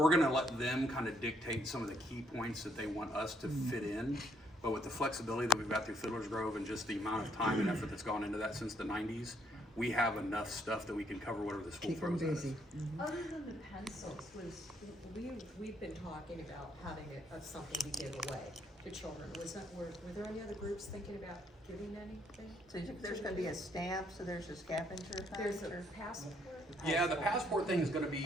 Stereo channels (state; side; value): normal; both; correlation 0.70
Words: gonna let them kind of dictate some of the key points that they want us to fit in. But with the flexibility that we've got through Fiddler's Grove and just the amount of time and effort that's gone into that since the 90s, we have enough stuff that we can cover whatever the school Keep them throws at us. busy. Other than the pencils, we've been talking about having something to give away to children. Were there any other groups thinking about giving anything? So there's gonna be a stamp, so there's a scavenger hunt? There's a passport? Yeah, the passport thing is gonna